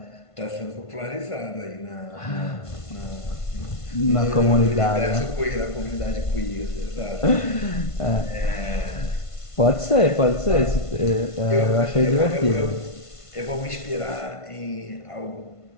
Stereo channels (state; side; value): late; right; 1.5 ms